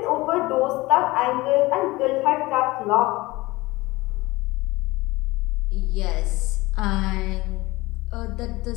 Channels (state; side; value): quieter; right; 20.8 dB